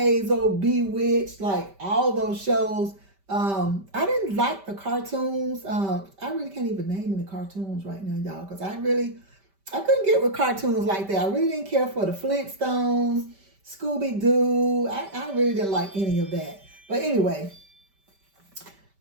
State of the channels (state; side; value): late; left; 5.1 ms